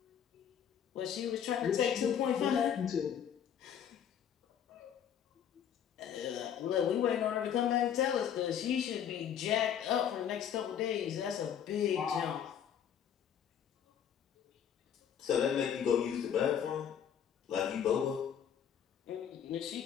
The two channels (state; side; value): quieter; right; 8.8 dB